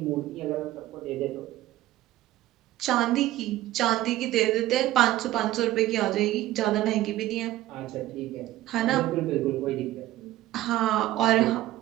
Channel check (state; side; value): quieter; left; 15.2 dB